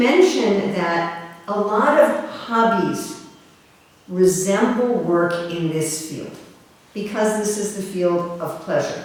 that a lot of hobbies resemble work in this field, because this is the field of pleasure.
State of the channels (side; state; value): both; identical; correlation 1.00